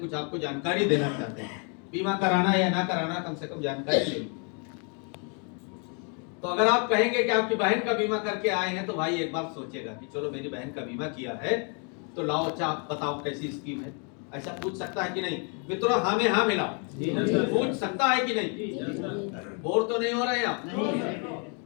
आपको जानकारी देना चाहते हैं। बीमा कराना या ना कराना, कम से कम जानकारी लेनी। तो अगर आप कहेंगे कि आपकी बहन का बीमा करके आए हैं, तो भाई एक बार सोचेगा कि चलो मेरी बहन का बीमा किया है तो लाओ, अच्छा आप बताओ कैसी स्कीम है। ऐसा पूछ सकता है कि नहीं मित्रों? हाँ में हाँ मिलाओ, पूछ सकता है कि नहीं? बोर तो नहीं हो रहे हैं आप?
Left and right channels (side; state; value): right; quieter; 38.5 dB